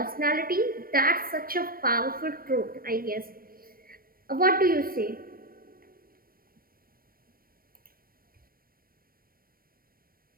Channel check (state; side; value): late; left; 0.43 ms